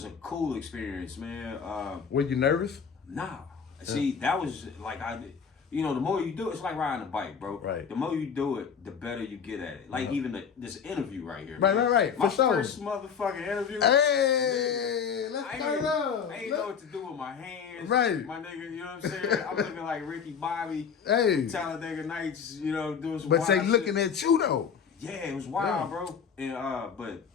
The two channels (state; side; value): quieter; right; 6.8 dB